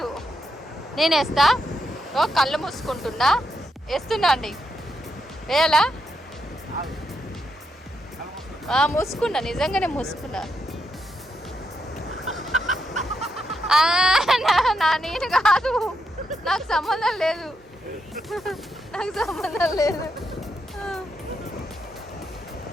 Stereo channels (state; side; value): normal; both; correlation 0.82